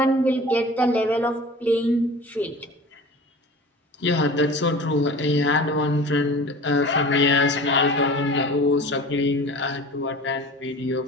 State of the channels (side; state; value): both; normal; correlation 0.39